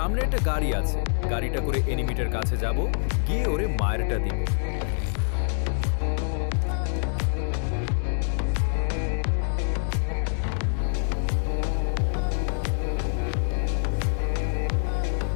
একটা গাড়ি আছে, গাড়িটা করে এনিমিটার কাছে যাব, গিয়ে ওরে মায়েরটা দিব।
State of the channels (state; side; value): silent; right; digital silence